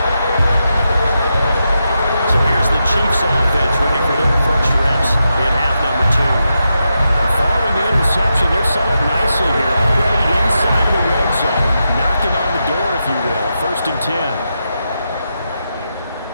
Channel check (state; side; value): inverted; both; correlation -0.87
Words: So here's the Chiefs offense ready for their first reps in half number 2. Following the interception, they're set up nicely here, already inside the red zone, knocking on the door, if you will. 1st and 10.